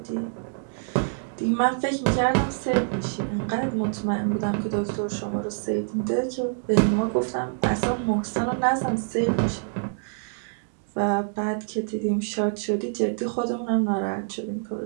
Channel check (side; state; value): left; silent; digital silence